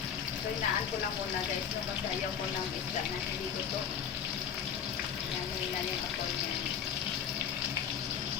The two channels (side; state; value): right; quieter; 7.9 dB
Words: So inaan ko lang muna guys. No? Kasi ayaw ko ng isda na hindi ko to. Yan ako yan.